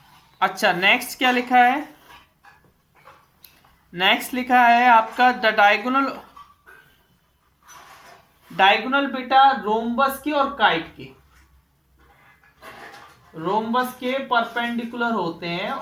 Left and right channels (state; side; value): identical; both; correlation 1.00